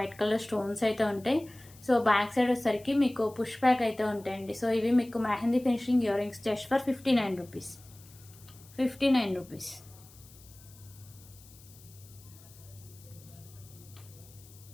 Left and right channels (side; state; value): left; noise; hiss, 23 dB below the sound